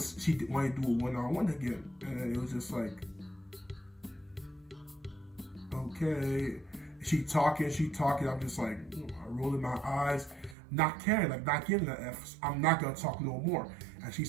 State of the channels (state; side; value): drops out; left; at 10.6 s